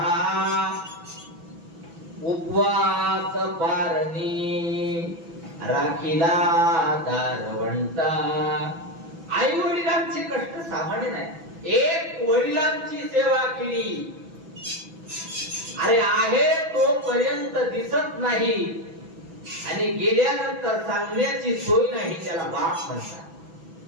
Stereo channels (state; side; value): late; left; 6.0 ms